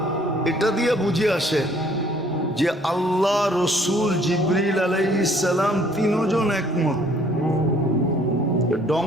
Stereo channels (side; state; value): both; normal; correlation 0.60